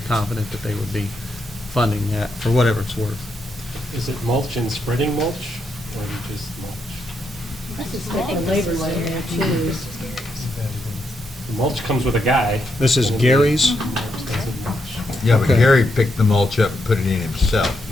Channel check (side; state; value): both; normal; correlation 0.81